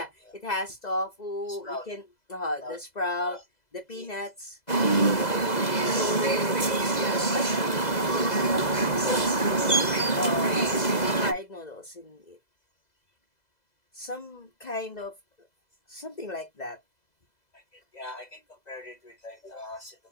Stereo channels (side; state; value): right; late; 2.0 ms